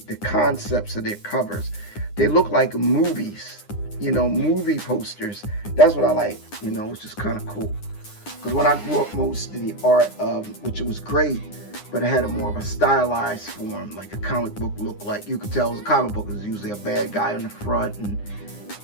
concepts of their covers. They look like movies, movie posters. That's what I like, it's just kind of cool. Because when I grew up, most of the art, which was great, but it had more of a stylized form, like a comic book looked like. You could tell a comic book is usually a bad guy on the front, and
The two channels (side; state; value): right; late; 9.8 ms